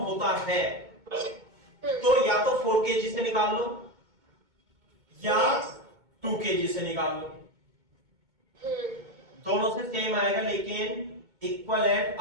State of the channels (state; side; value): late; left; 2.2 ms